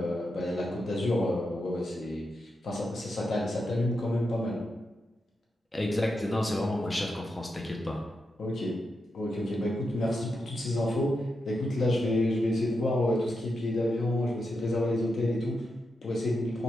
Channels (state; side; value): normal; both; correlation 0.86